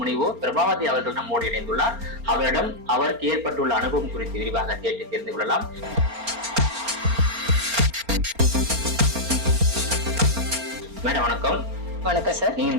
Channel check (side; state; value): left; late; 4.3 ms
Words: பிரபாவதி அவர்கள் நம்மோடு இணைந்துள்ளார். அவரிடம் அவருக்கு ஏற்பட்டுள்ள அனுபவம் குறித்து விரிவாக கேட்டு தெரிந்து கொள்ளலாம். மேடம் வணக்கம். வணக்கம் சார். நீங்க